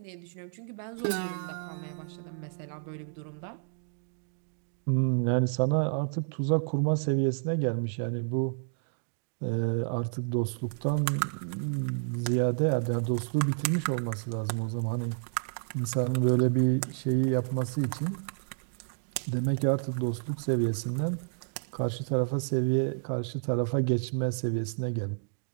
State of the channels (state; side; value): silent; left; digital silence